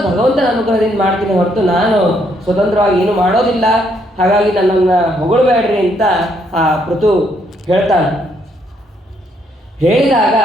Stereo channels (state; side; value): normal; both; correlation 0.72